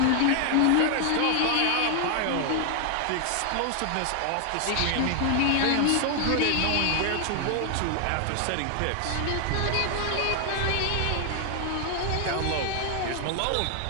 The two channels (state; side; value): different; both; correlation 0.00